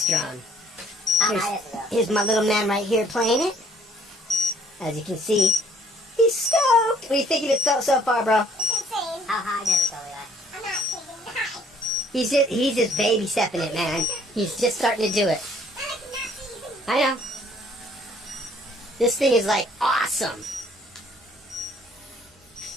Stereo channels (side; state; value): both; normal; correlation 0.61